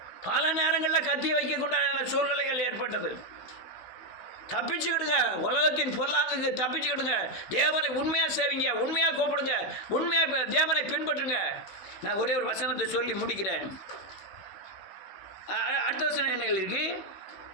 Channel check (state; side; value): late; right; 16 ms